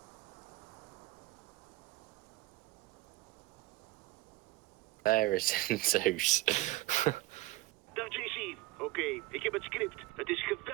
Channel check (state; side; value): quieter; left; 18.7 dB